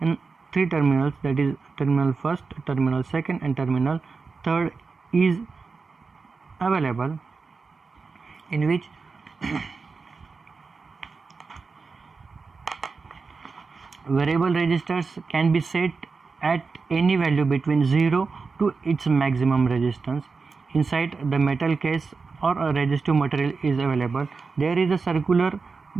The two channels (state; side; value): quieter; left; 4.6 dB